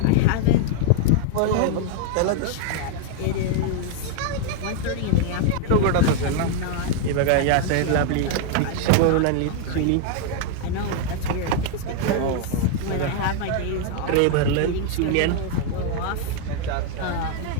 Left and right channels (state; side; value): different; both; correlation 0.00